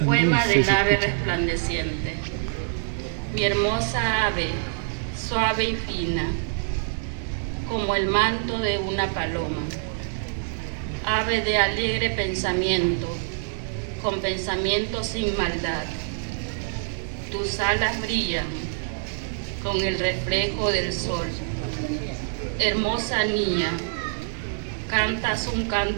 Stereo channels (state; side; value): silent; left; 61 dB below the other